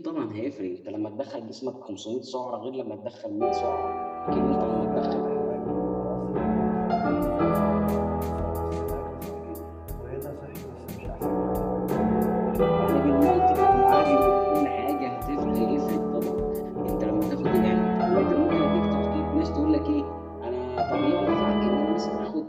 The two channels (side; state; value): both; identical; correlation 1.00